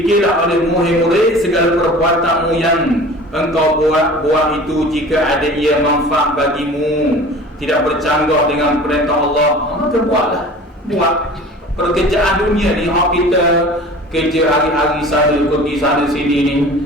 oleh murid-murid segala perbuatanmu yang engkau buat itu, jika ada ia manfaat bagimu, tidak bercanggah dengan perintah Allah, maka buatlah. Buat pekerjaan dunia ni, kita kerja hari-hari sana, pergi sana sini ni,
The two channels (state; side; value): normal; both; correlation 0.41